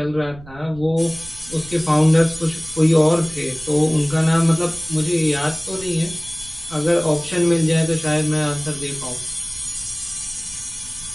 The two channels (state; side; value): noise; right; rumble, 19 dB below the sound